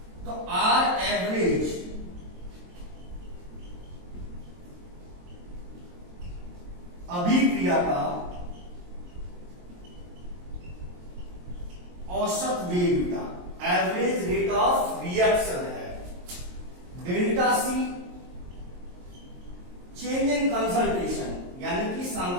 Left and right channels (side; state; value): left; late; 22 ms